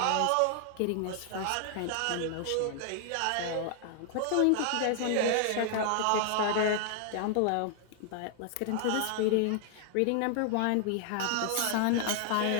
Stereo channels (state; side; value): different; both; correlation 0.00